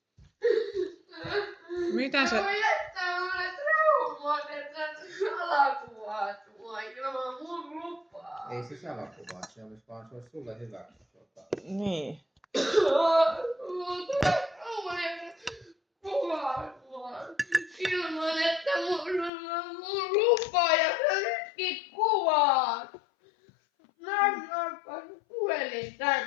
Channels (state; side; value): drops out; right; at 19.3 s